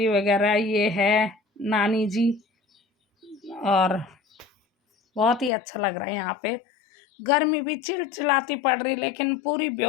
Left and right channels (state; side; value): drops out; right; at 5.5 s